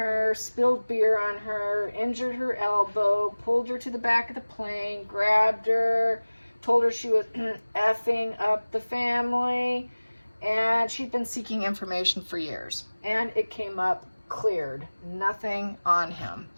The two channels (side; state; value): both; inverted; correlation -1.00